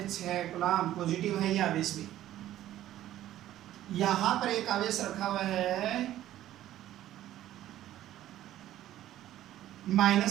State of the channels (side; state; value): left; quieter; 13.3 dB